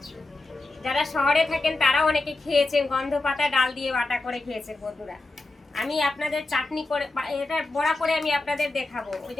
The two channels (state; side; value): quieter; right; 3.0 dB